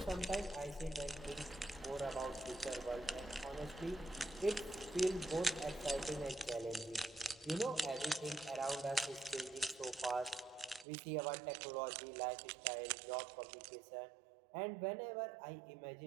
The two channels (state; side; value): drops out; left; at 10.9 s